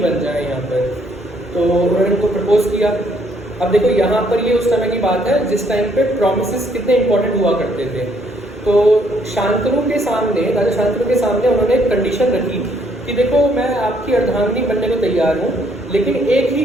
बन जाए यहाँ पर। तो उन्होंने उनको प्रपोज किया। अब देखो यहाँ पर ये उस समय की बात है जिस टाइम पे प्रॉमिसेस कितने इंपॉर्टेंट हुआ करते थे। तो शांतनु के सामने, राजा शांतनु के सामने उन्होंने एक कंडीशन रखी कि देखो मैं आपकी अर्धांगिनी बनने को तैयार हूँ, लेकिन एक ही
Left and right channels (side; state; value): both; normal; correlation 0.68